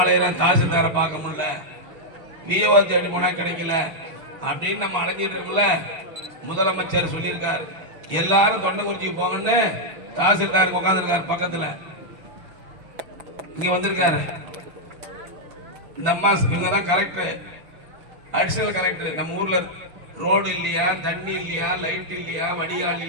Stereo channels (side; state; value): left; late; 5.9 ms